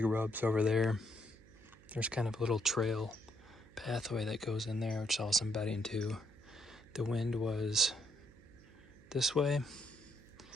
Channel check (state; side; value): noise; right; hum, 23 dB below the sound